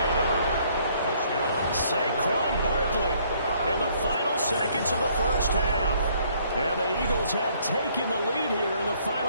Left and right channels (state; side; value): inverted; both; correlation -0.64